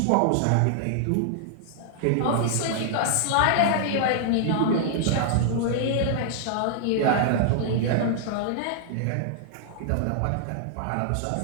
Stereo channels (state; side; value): different; both; correlation -0.01